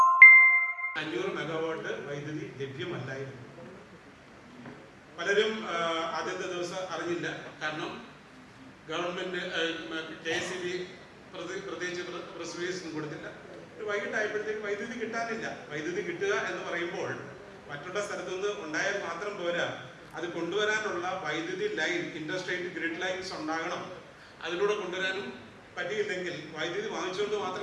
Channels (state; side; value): identical; both; correlation 1.00